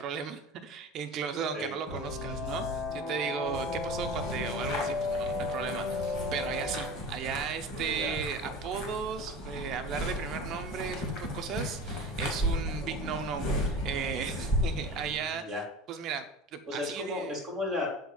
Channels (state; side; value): normal; both; correlation 0.34